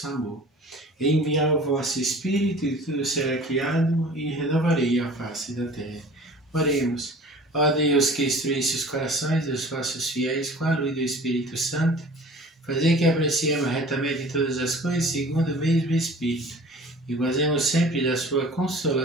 amor. Enviai o vosso Espírito e tudo será criado e renovarei a face da terra. Oremos. Ó Deus, que instruísse os corações dos vossos fiéis com a luz do Espírito Santo, fazei que apreciemos retamente todas as coisas segundo o mesmo Espírito e gozemos sempre da sua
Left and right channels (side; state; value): both; normal; correlation 0.45